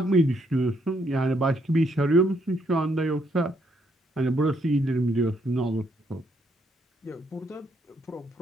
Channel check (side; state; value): both; normal; correlation 0.73